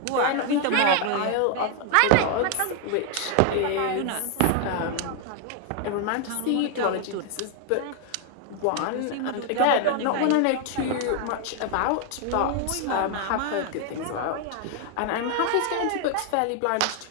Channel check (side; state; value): both; different; correlation 0.00